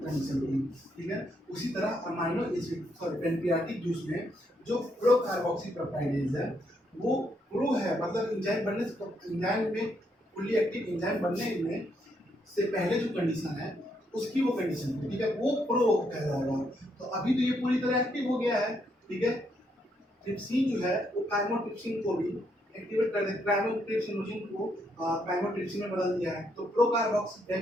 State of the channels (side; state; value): both; normal; correlation 0.75